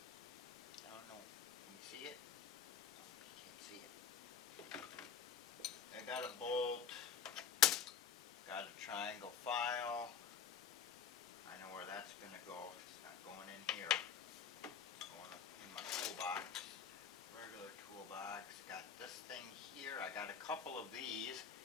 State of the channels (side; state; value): right; quieter; 7.7 dB